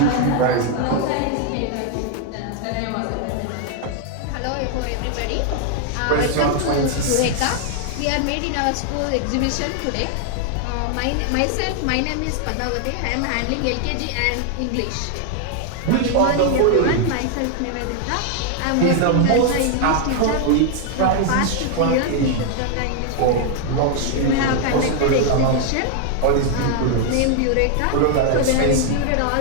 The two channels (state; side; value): different; both; correlation 0.00